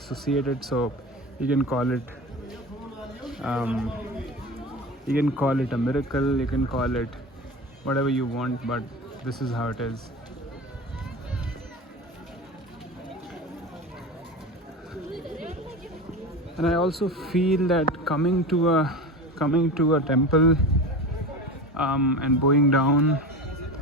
it. So you can call it a miracle, you can call it whatever you want, but this is how it is. And I also feel that coming to a temple and bowing down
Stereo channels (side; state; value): both; normal; correlation 0.30